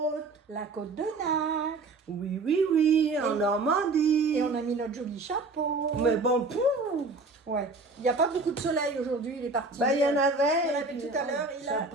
La côte de Nacre. Oui, en Normandie. Et on a mis notre joli chapeau. Mais bon, pouf. Ouais. Il n'y a pas beaucoup de soleil aujourd'hui, il est parti. Bah, il y en avait. Il y en avait puis, tout à l'heure,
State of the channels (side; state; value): left; quieter; 3.6 dB